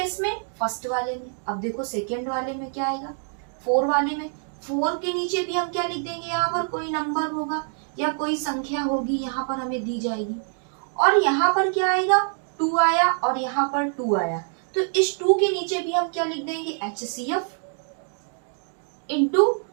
में, फर्स्ट वाले में। अब देखो सेकेंड वाले में क्या आएगा, 4 वाले में, 4 के नीचे भी हम क्या लिख देंगे, यहाँ पर कोई नंबर होगा या कोई संख्या होगी, यहाँ पर हमें दी जाएगी। और यहाँ पर क्या आएगा, 2 आया और यहाँ पर 2 आया, तो इस 2 के नीचे भी हम क्या लिख देंगे, HCF इंटू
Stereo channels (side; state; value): left; silent; 56 dB below the other